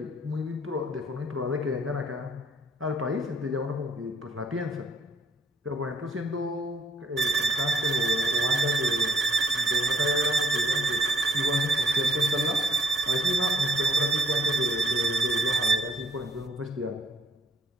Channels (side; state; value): both; normal; correlation 0.65